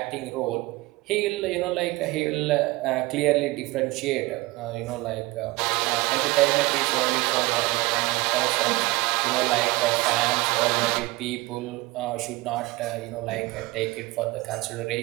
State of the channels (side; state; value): left; quieter; 21.4 dB